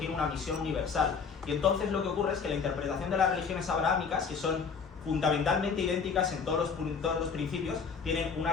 una misión universal. Y entonces lo que ocurre es que la interpretación de las religiones abrahámicas, que son fundamentalmente idénticas en todos los principios, tienen una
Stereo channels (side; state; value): right; quieter; 5.7 dB